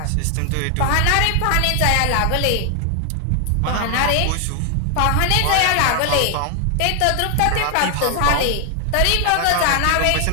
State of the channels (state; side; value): different; both; correlation 0.00